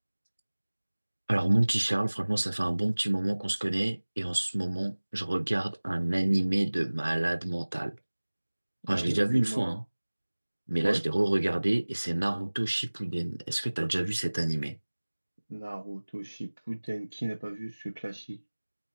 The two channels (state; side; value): inverted; both; correlation -1.00